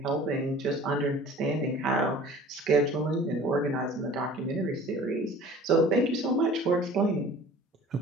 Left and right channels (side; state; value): both; normal; correlation 0.45